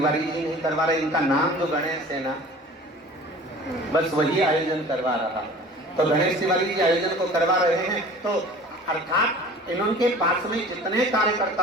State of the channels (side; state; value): both; normal; correlation 0.43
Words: जी नहीं करवा रहे, इनका नाम जो गणेश है ना, बस वही आयोजन करवा रहा। तो गणेश तिवारी जी आयोजन को करवा रहे हैं, तो अर्थात इनके पास में जितने